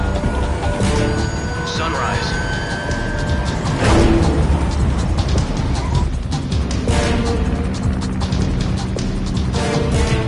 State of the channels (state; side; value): identical; both; correlation 1.00